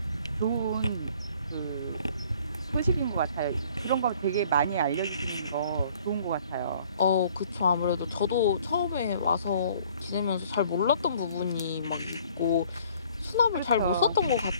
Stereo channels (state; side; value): inverted; both; correlation -0.57